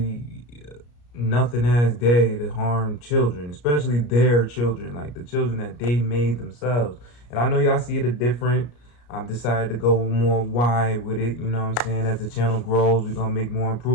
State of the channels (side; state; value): right; late; 33 ms